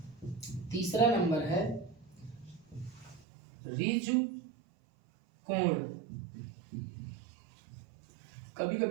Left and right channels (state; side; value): drops out; left; at 3.2 s